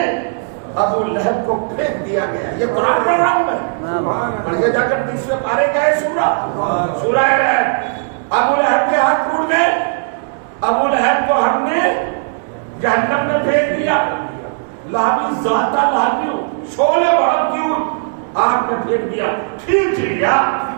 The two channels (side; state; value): left; silent; digital silence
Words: ابو لہب کو پھینک دیا گیا. یہ قرآن پروگرام ہے، پڑھیے جا کر 30ویں پارے کا ہے سورہ رعد. ابو لہب کے ہاتھ ٹوٹ گئے. ابو لہب کو ہم نے جہنم میں پھینک دیا. لہبی ذاتہ لہبی، شعلے بھڑکتی ہوئی آگ میں پھینک دیا. کھینچ لیا